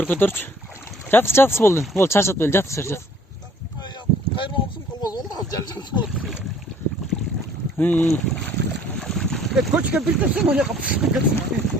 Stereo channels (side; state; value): both; normal; correlation 0.56